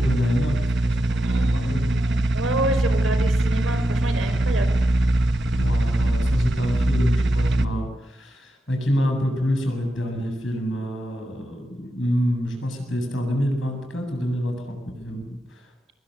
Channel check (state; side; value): normal; both; correlation 0.87